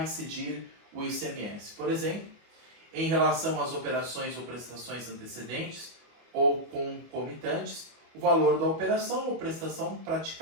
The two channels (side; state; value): left; late; 25 ms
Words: incidir o ICMS? Por exemplo, em relação às operações ou prestações antecedentes ou concomitantes, o valor da operação ou prestação